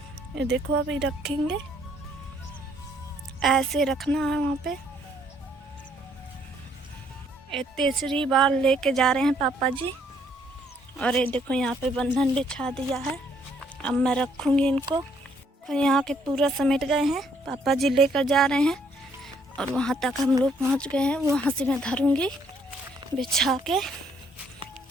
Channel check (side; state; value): both; normal; correlation 0.67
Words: देखो अभी रखेंगे, ऐसे रखना है वहाँ पे। ये तीसरी बार लेके जा रहे हैं पापा जी। और ये देखो यहाँ पे बंधन बिछा दिया है। अब मैं रखूँगी इनको। तो यहाँ के पूरा समेट गए हैं, पापा जी लेकर जा रहे हैं और वहाँ तक हम लोग पहुँच गए हैं। वहाँ से मैं धरूँगी बिछा के